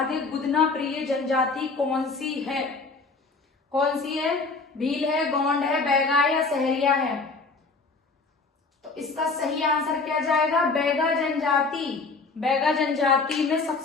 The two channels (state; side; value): quieter; right; 4.0 dB